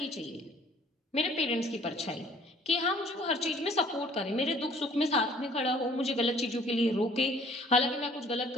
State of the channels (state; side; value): normal; both; correlation 0.55